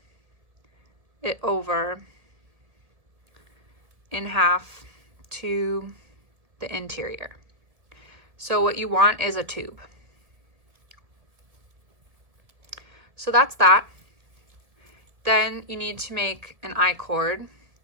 it over in half to the interior. So what you want is a tube. So that's that. Then you need to make an I-cord.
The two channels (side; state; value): left; late; 1.7 ms